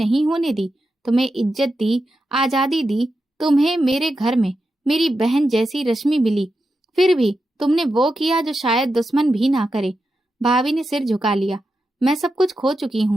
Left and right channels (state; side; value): normal; both; correlation 0.89